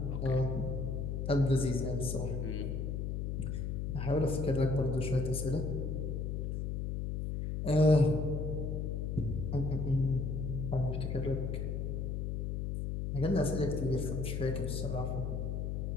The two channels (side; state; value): left; noise; hum, 2 dB below the sound